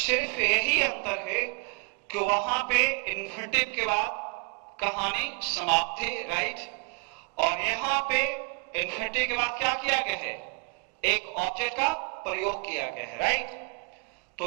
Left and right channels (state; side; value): quieter; left; 32.4 dB